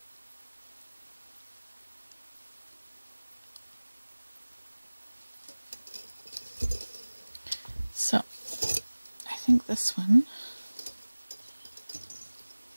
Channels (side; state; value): both; inverted; correlation -1.00